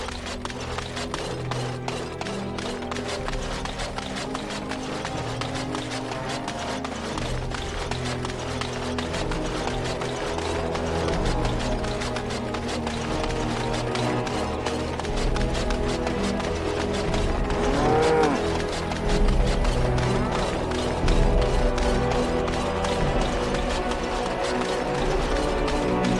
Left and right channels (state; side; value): identical; both; correlation 1.00